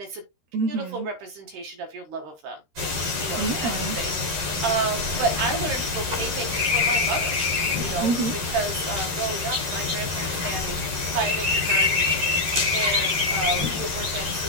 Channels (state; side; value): late; left; 13 ms